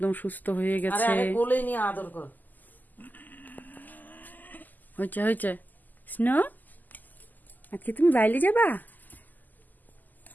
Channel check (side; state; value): right; late; 0.084 ms